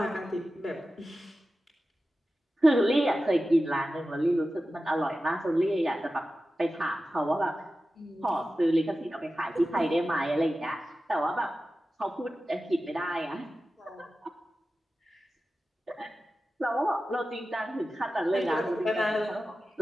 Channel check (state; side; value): normal; both; correlation 0.94